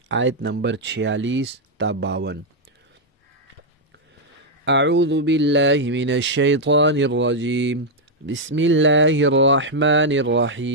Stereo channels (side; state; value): both; normal; correlation -0.02